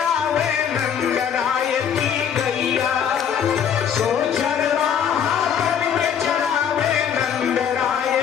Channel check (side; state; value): right; quieter; 8.1 dB